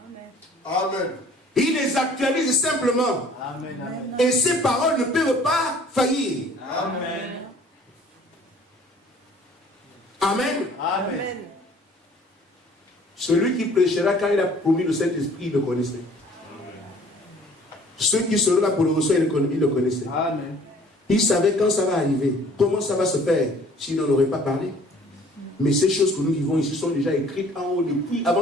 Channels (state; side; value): normal; both; correlation 0.54